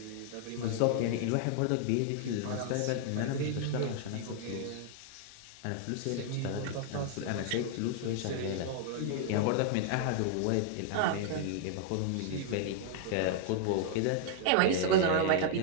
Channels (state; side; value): different; both; correlation -0.01